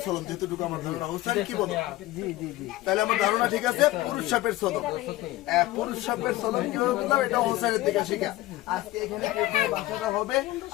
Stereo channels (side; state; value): right; quieter; 17.1 dB